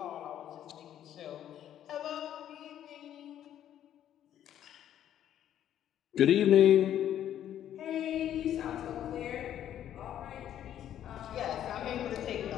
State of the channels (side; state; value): right; quieter; 10.9 dB